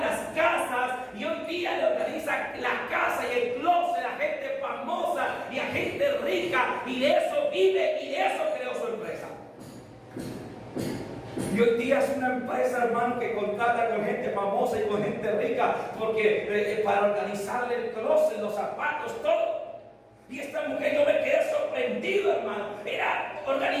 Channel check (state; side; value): identical; both; correlation 1.00